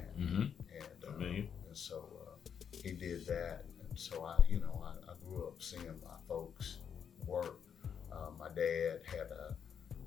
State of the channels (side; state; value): right; quieter; 7.6 dB